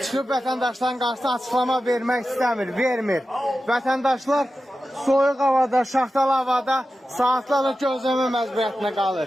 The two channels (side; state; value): both; normal; correlation 0.92